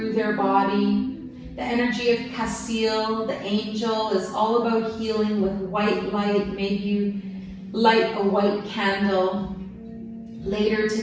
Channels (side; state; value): both; identical; correlation 1.00